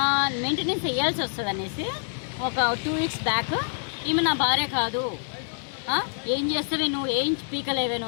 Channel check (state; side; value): silent; right; 61 dB below the other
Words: మెయింటెనెన్స్ వేయాల్సి వస్తుంది అనేసి ఒక 2 weeks బ్యాక్ ఈమె నా భార్య కాదు, ఏం చేస్తావే నువ్వు, ఏం పీకలేవే